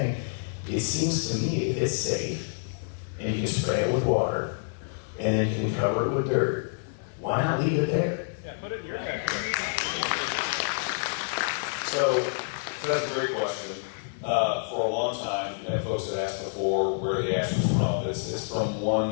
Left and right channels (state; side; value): silent; right; digital silence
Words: It seems to me if it's safe and you can spray it with water and then you can cover it with dirt, why not leave it there? Yeah, put it in your backyard. So that's a great question. For a long time, and folks had asked before where the ash was from. It's from